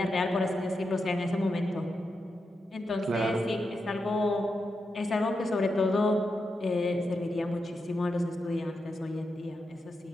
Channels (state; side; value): normal; both; correlation 0.86